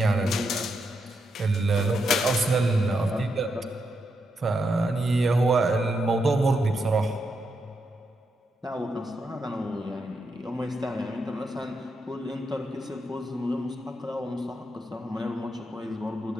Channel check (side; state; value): both; normal; correlation 0.82